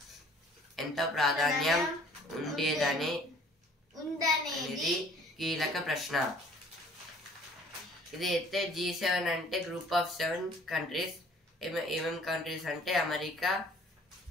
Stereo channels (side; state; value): both; normal; correlation 0.54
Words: ఎంతో ప్రాధాన్యం ఉండేదని కీలక ప్రశ్న. ఇదైతే G7 అంటే గ్రూప్ ఆఫ్ 7 కంట్రీస్. ఏమేం కంట్రీస్ అంటే